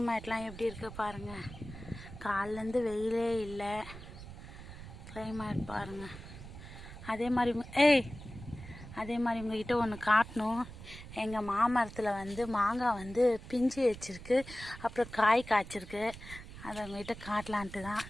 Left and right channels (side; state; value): right; noise; rumble, 13 dB below the sound